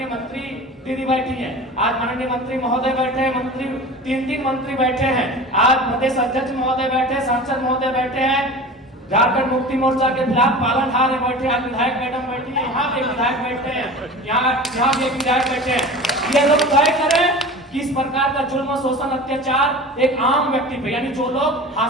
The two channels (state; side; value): normal; both; correlation 0.36